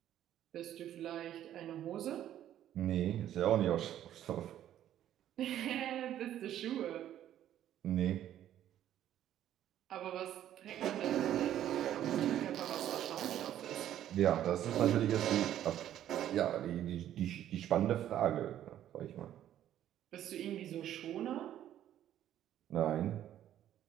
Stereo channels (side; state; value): left; quieter; 11.6 dB